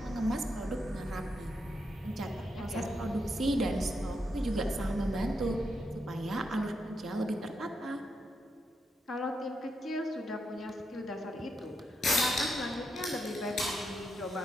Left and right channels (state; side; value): normal; both; correlation 0.83